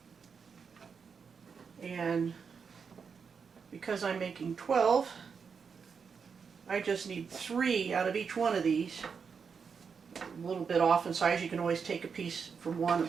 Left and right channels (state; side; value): quieter; left; 6.0 dB